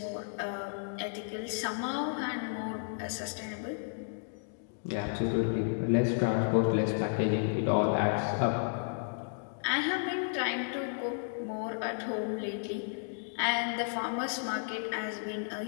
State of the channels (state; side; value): silent; right; digital silence